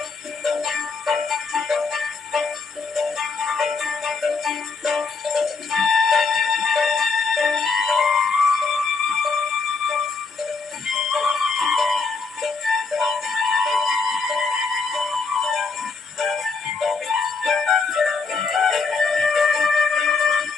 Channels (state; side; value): quieter; right; 4.5 dB